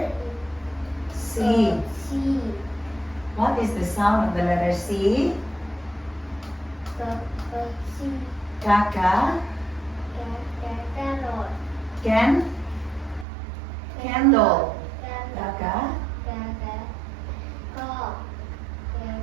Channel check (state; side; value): drops out; left; at 13.2 s